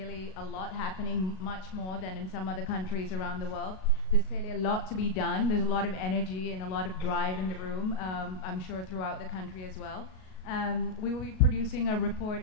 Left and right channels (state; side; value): late; right; 38 ms